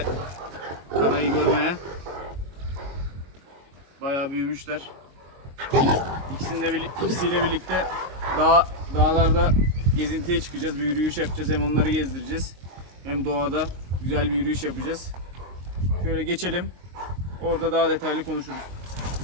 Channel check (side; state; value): left; late; 22 ms